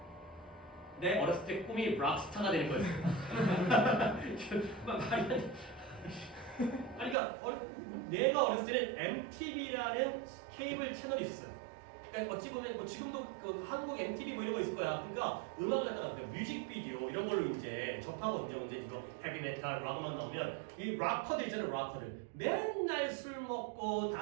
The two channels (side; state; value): left; drops out; at 7.2 s